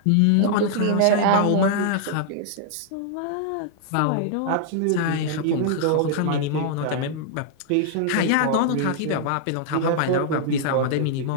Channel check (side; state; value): both; different; correlation -0.01